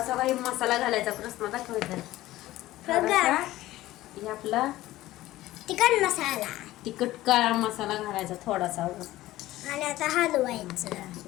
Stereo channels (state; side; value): quieter; right; 16.1 dB